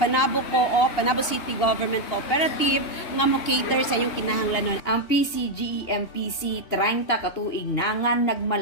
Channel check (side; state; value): right; late; 2.8 ms